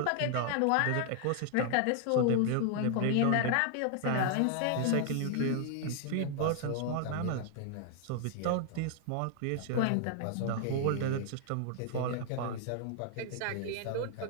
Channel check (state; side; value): different; both; correlation 0.00